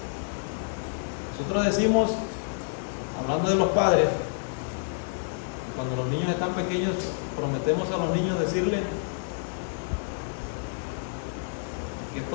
nosotros decimos, hablando de los padres, cuando los niños están pequeños, prometemos a los niños decirles que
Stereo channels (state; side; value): silent; right; digital silence